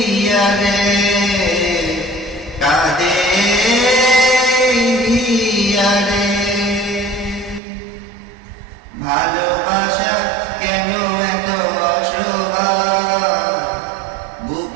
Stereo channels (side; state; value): left; drops out; at 7.6 s